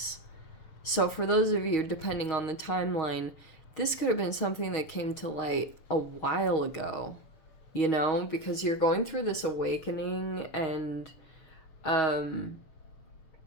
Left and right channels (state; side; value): late; right; 6.3 ms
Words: So for those of you, depending on the timeline, this could have been something that came to light a while ago, you know, because you're going through this awakening, and